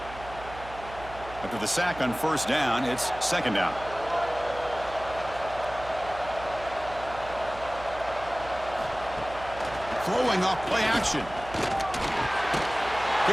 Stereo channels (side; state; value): right; noise; hum, 15 dB below the sound